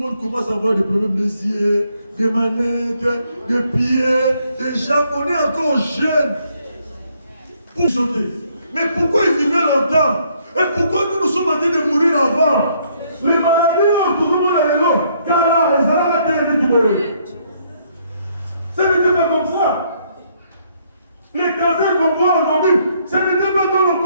commence à avoir des problèmes des yeux, des manettes, des pieds, des jambes. On est encore jeunes pour sauter. Mais pourquoi ils vivaient longtemps? Et pourquoi nous sommes en train de mourir avant? Les maladies, tout le monde est là. Car là, ils ont la terre de ce n'était pas comme ça. Les cancers qu'on voit aujourd'hui, ce n'était pas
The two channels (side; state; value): both; inverted; correlation -0.69